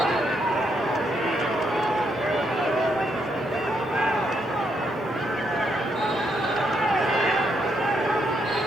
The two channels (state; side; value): normal; both; correlation 0.77